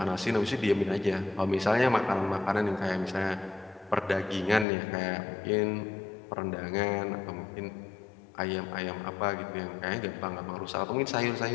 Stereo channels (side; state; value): right; drops out; at 4.7 s